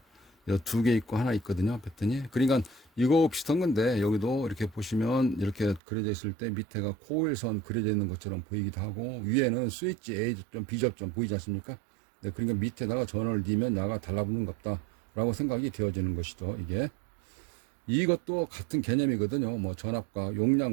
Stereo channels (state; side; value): drops out; left; at 5.8 s